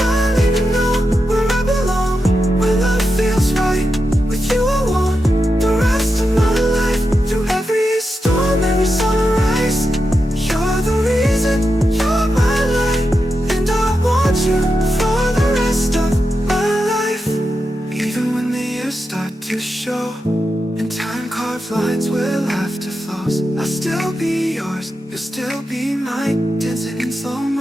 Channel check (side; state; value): both; normal; correlation 0.88